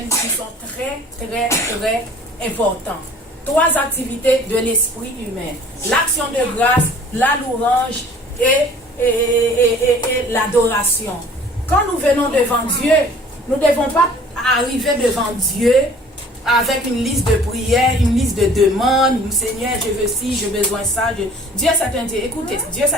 qui sont très, très, très importantes. Trois activités de l'esprit humain. L'action de grâce, la louange et l'adoration. Quand nous venons devant Dieu, nous ne devons pas arriver devant Dieu avec une liste de prières, une liste de demandes. Seigneur, je veux ci, j'ai besoin de ça. Dieu, c'est un Dieu. Écoutez, Dieu,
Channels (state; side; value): normal; both; correlation 0.51